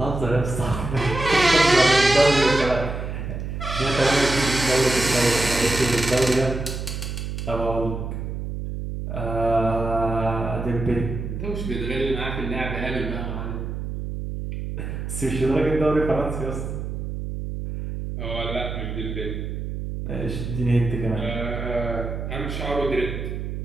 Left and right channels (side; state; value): right; noise; hum, 5 dB below the sound